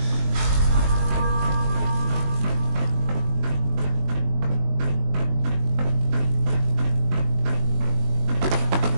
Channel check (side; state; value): left; late; 21 ms